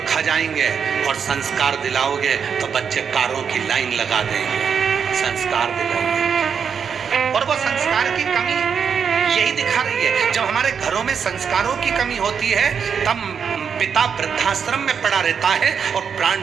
खा जाएंगे, और संस्कार दिलाओगे तो बच्चे कारों की लाइन लगा देंगे। संस्कार दिलाओगे, और वो संस्कार की कमी यही दिखा रही है। जब हमारे घरों में संस्कारों की कमी होती है तब पिता वृद्धाश्रम में पड़ा रहता है और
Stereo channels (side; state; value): left; quieter; 6.9 dB